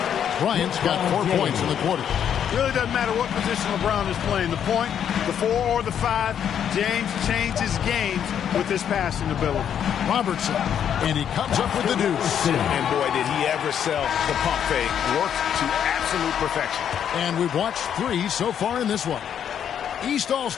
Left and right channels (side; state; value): right; quieter; 8.9 dB